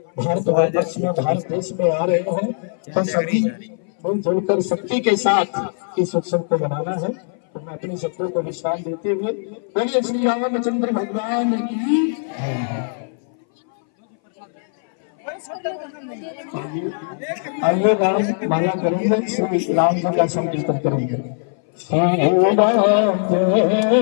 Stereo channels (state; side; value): silent; right; 61 dB below the other